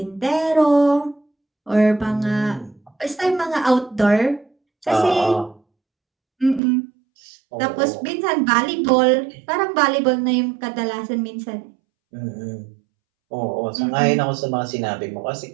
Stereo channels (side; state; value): left; drops out; at 6.6 s